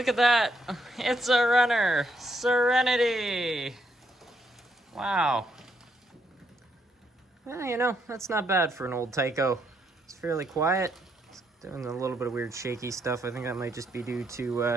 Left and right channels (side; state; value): both; normal; correlation 0.75